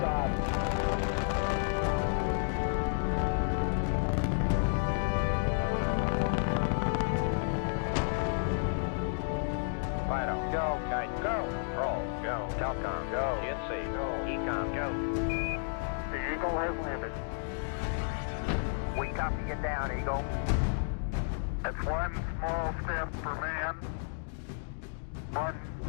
Fido, go. Kite, go. Roll, go. Telcom, go. GNC, go. Ecom, go. The Eagle has landed. We copy you down, Eagle. It's one small step for man, one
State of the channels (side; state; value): right; silent; digital silence